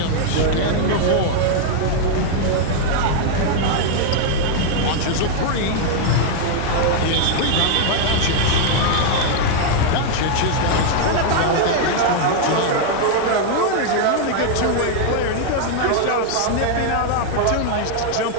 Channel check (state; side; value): different; both; correlation 0.00